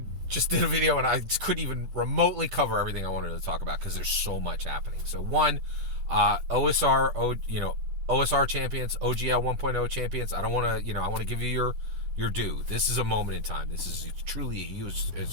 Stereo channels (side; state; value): left; late; 10 ms